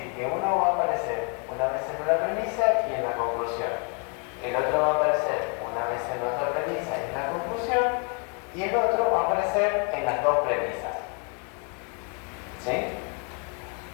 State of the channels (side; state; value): right; quieter; 36.8 dB